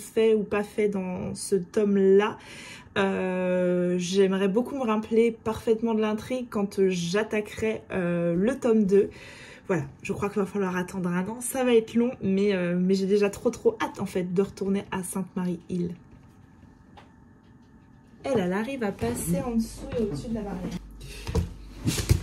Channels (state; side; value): identical; both; correlation 1.00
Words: ou pas fait dans ce tome-là. J'aimerais beaucoup me rappeler parfaitement de l'intrigue quand j'attaquerai le tome 2. Voilà, je crois qu'il va falloir attendre un an, ça va être long, mais j'ai déjà trop hâte en fait de retourner à Sainte-Marie-Île. Elle arrive à passer en dessous et au-dessus de la barrière.